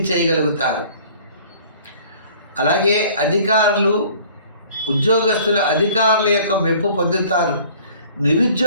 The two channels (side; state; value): both; inverted; correlation -0.52